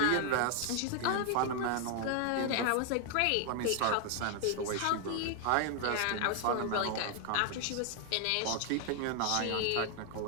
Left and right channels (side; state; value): both; different; correlation 0.00